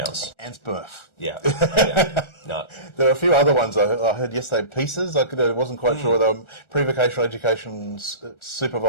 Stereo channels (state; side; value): late; right; 1.4 ms